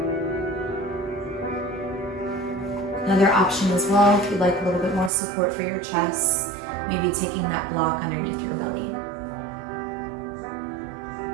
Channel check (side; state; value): left; drops out; at 5.1 s